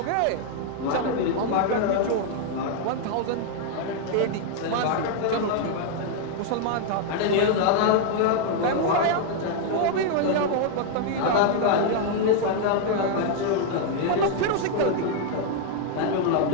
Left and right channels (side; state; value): both; different; correlation 0.00